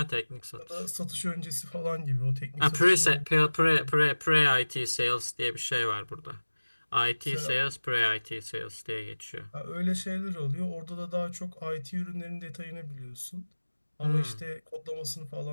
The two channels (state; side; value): inverted; both; correlation -1.00